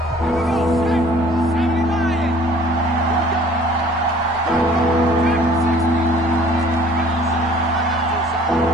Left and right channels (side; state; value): both; normal; correlation 0.53